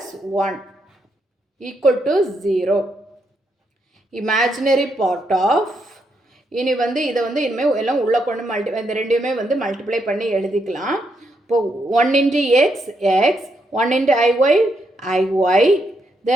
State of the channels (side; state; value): both; normal; correlation 0.79